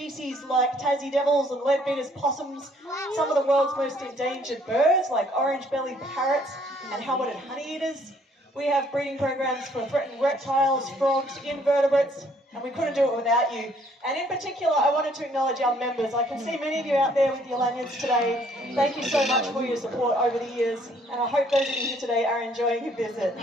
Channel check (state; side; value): normal; both; correlation 0.63